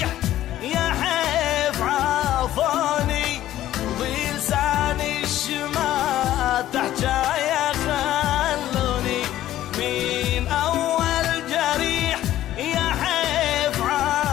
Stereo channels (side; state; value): right; quieter; 13.4 dB